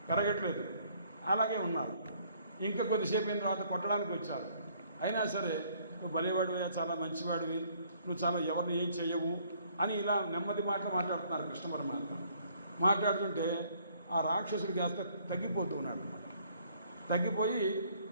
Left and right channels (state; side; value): inverted; both; correlation -0.63